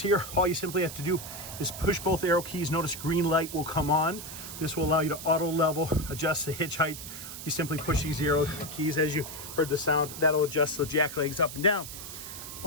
all you simply have to do is push both arrow keys. Notice green light will come on. This will allow you to auto level, adjust the hitch height. You simply push these arrow keys. As you heard the sound, that'll adjust the jack legs up and down.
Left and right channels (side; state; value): right; noise; hiss, 10 dB below the sound